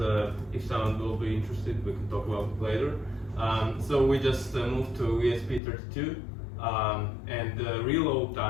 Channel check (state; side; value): drops out; right; at 5.6 s